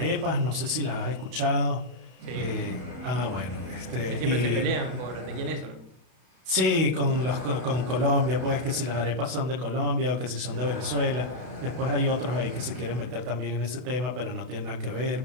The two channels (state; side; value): late; left; 32 ms